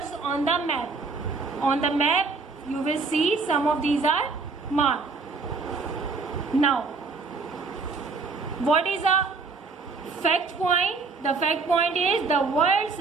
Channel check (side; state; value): left; quieter; 4.4 dB